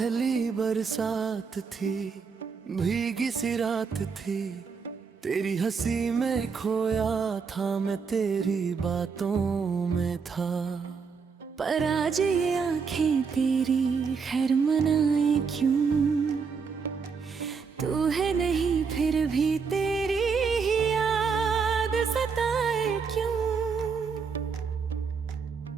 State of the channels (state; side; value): quieter; left; 5.6 dB